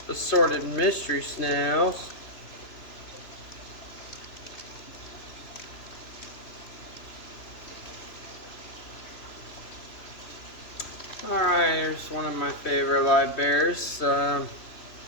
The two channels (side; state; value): right; late; 3.0 ms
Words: assorted mystery snails. Alright, here's one of my favorite live bears.